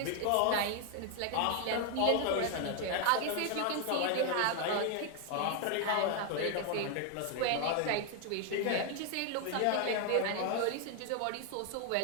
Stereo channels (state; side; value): different; both; correlation 0.01